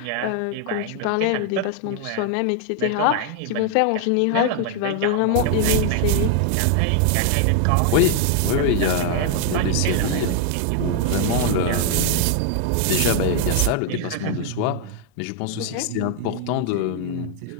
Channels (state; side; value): different; both; correlation 0.00